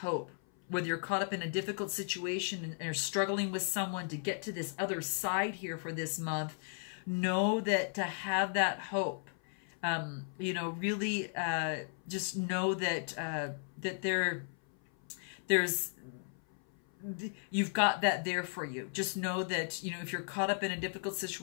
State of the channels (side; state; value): right; silent; 54 dB below the other